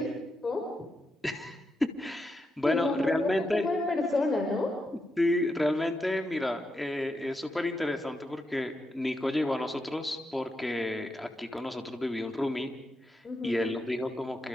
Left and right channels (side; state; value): both; normal; correlation 0.85